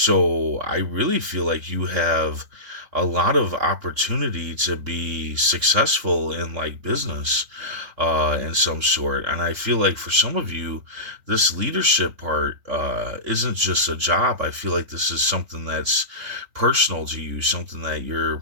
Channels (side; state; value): left; late; 3.6 ms